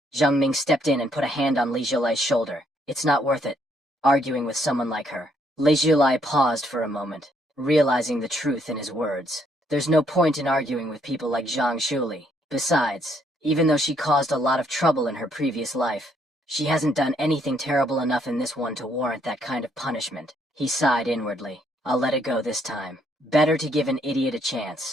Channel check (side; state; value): both; normal; correlation 0.70